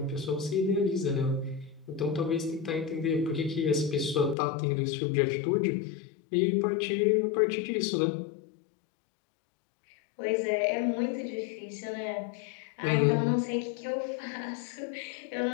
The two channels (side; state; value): right; drops out; at 4.4 s